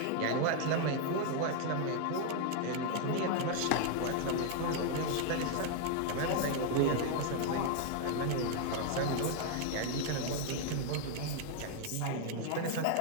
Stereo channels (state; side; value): different; both; correlation 0.00